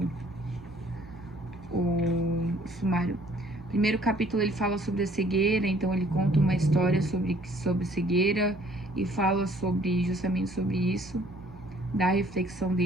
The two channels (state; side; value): normal; both; correlation 0.59